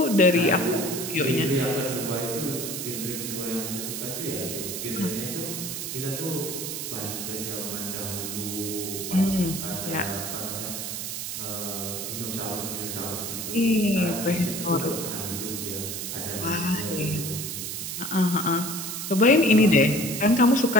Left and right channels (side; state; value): right; noise; hiss, 5 dB below the sound